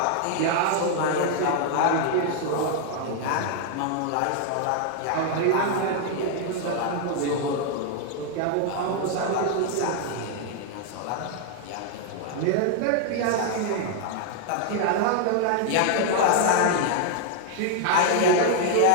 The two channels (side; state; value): both; different; correlation 0.00